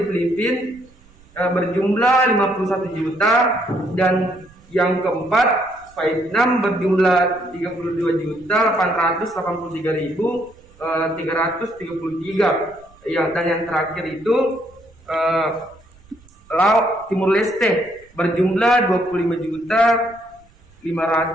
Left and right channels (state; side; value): noise; right; rumble, 28 dB below the sound